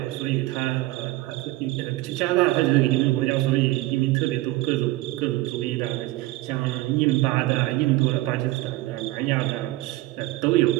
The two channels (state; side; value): quieter; left; 18.4 dB